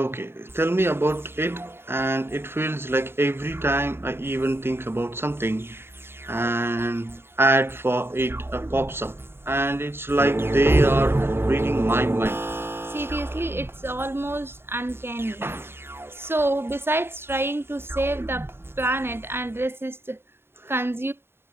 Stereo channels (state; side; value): late; left; 0.11 ms